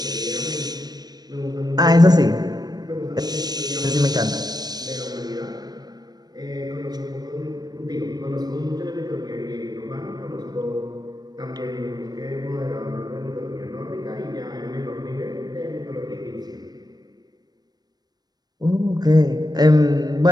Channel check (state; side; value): late; left; 0.19 ms